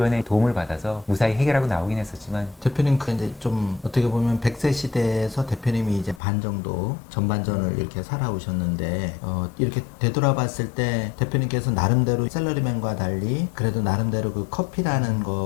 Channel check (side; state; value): right; drops out; at 6.2 s